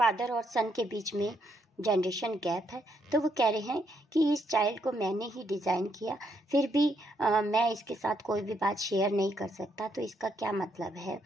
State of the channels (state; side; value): normal; both; correlation 0.75